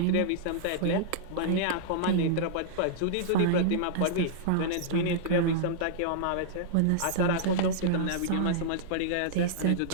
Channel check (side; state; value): both; different; correlation -0.02